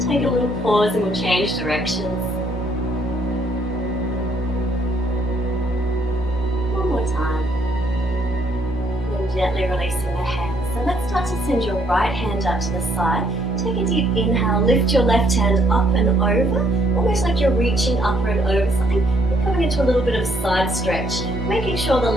Take a little pause and we'll change directions. One more time. And gently releasing the hands. So let's start to send your right hand out to the side. Take a deep inhale, lift your left hand up and over, almost like you're reaching upper and over something. You're coming into a little bit of side stretch, making sure the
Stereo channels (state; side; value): normal; both; correlation 0.69